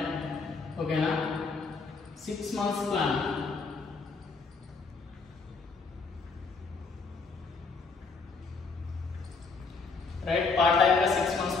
ఓకేనా? 6 months plan. Right, part time గా 6 months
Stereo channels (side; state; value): right; quieter; 4.4 dB